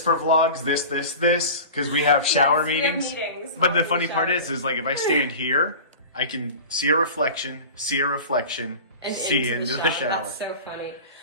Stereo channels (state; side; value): inverted; both; correlation -0.35